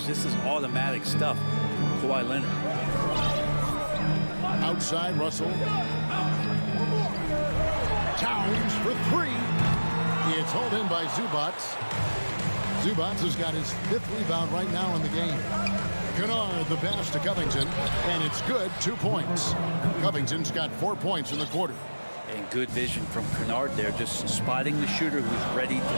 This is automatic stuff. Kawhi Leonard. Outside, Russell. Towns for 3. It's hauled in by Zubats. Zubats has got his 5th rebound right now in the game. Kennard the pass to Covington, and it's good. 2 points. Covington's got 4 points in the quarter. And good vision from Kennard there, just spotting the shooter who's ready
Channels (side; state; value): both; inverted; correlation -1.00